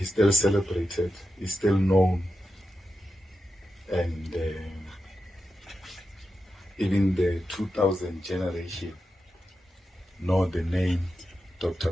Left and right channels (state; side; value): normal; both; correlation 0.89